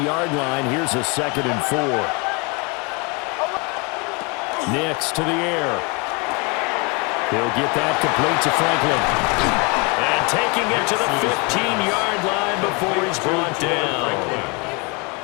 line. Here's a 2nd and 4. Nix to the air. He'll get that complete to Franklin. And taking it to the 15-yard line before he's brought down.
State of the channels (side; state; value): right; quieter; 30.6 dB